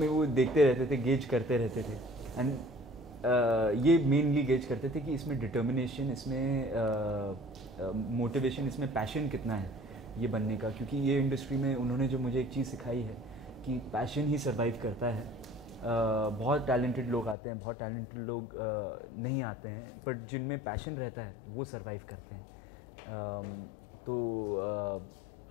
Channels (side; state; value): right; drops out; at 17.4 s